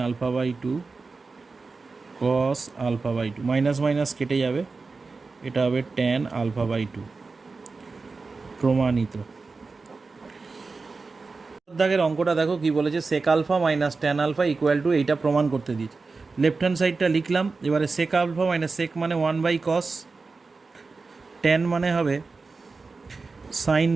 alpha by 2 cos alpha by 2, minus minus কেটে যাবে, এটা হবে ট্যান আলফা বাই 2। প্রমাণিত। দাগের অঙ্কটা দেখো কি বলেছে, sec alpha minus tan alpha equal to, এইটা প্রমাণ করতে দিয়েছে। লেফট হ্যান্ড সাইডটা লিখলাম, এবারে সেক আলফা মাইনাস সেক মানে 1 বাই কস, ট্যান মানে হবে সাইন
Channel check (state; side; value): quieter; left; 4.1 dB